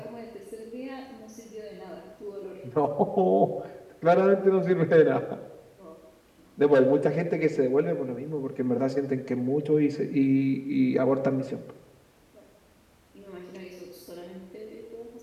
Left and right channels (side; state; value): both; identical; correlation 1.00